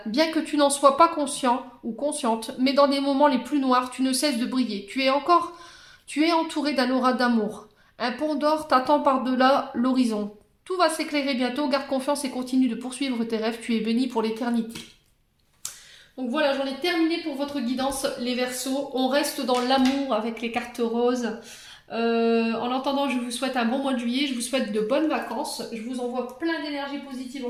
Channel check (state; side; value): identical; both; correlation 1.00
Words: bien que tu n'en sois pas conscient ou consciente, mais dans des moments les plus noirs, tu ne cesses de briller. Tu es entouré d'un aura d'amour. Un pont d'or t'attend par-delà l'horizon. Tout va s'éclairer bientôt, garde confiance et continue de poursuivre tes rêves, tu es béni pour l'éternité. Donc voilà, j'en ai terminé pour votre guidance, les Verseaux. On reste dans l'amour avec les cartes roses. En attendant, je vous souhaite un bon mois de juillet, je vous souhaite de bonnes vacances, je vous envoie plein d'énergie positive